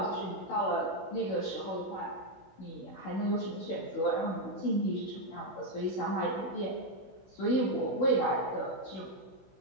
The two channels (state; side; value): late; right; 16 ms